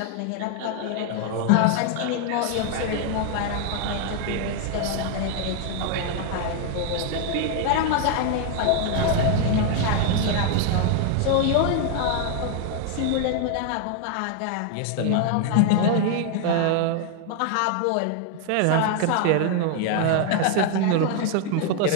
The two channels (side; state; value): both; different; correlation 0.00